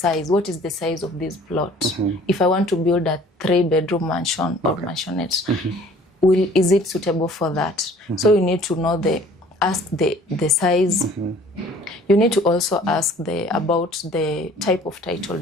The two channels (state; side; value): normal; both; correlation 0.52